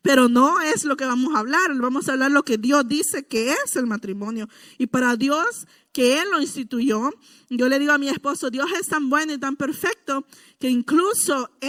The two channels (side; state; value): both; identical; correlation 1.00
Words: Pero no es lo que vamos a hablar lo que Dios dice que es el matrimonio. Y para Dios, que Él lo instituyó, yo le digo a mi esposo, Dios es tan bueno y tan perfecto que incluso